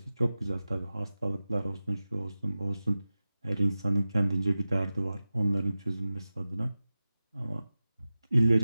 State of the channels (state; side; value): inverted; both; correlation -0.96